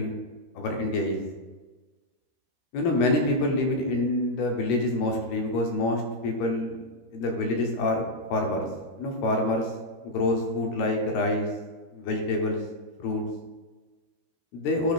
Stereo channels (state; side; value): late; right; 13 ms